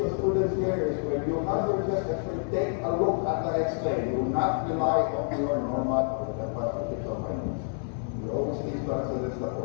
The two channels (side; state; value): right; silent; 59 dB below the other